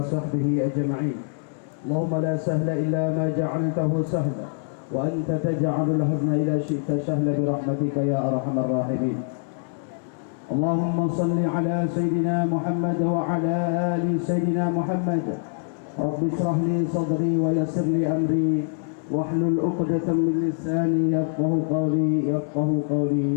أجمعين. اللهم لا سهل إلا ما جعلته سهلا وأنت تجعل الحزن إذا شئت سهلا برحمتك يا أرحم الراحمين. اللهم صل على سيدنا محمد وعلى آل سيدنا محمد. رب اشرح لي صدري ويسر لي أمري واحلل عقدة من لساني يفقهوا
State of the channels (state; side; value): silent; right; 62 dB below the other